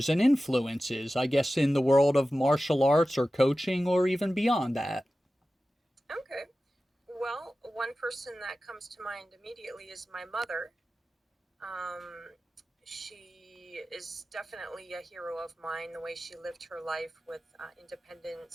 and influences, I guess, in the world of martial arts or coaching or even beyond that. Okay. Well, one person that comes to mind immediately is my mother. Um, she is definitely a hero of mine. The way she lived her life with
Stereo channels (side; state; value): both; normal; correlation 0.95